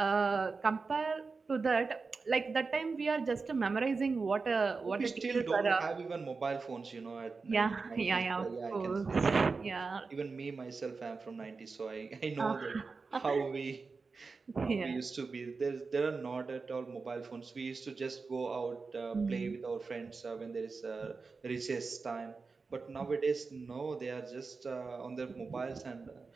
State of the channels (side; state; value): left; quieter; 4.4 dB